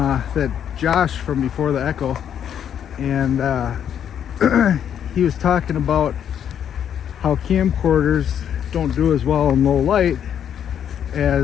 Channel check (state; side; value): quieter; right; 9.1 dB